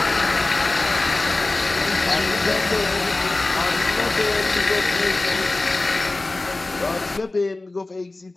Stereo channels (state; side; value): quieter; right; 3.1 dB